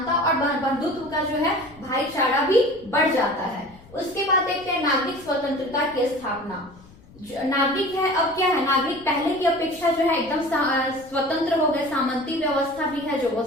और बंधुत्व का जो है भाईचारा भी बढ़ जाता है। उसके बाद देखते हैं नागरिक स्वतंत्रता की स्थापना। नागरिक है, अब क्या है, नागरिक पहले की अपेक्षा जो है एकदम स्वतंत्र हो गए, सामंती व्यवस्था भी है जो वो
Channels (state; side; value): noise; left; rumble, 24 dB below the sound